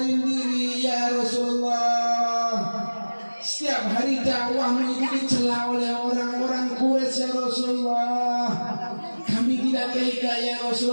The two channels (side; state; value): both; inverted; correlation -1.00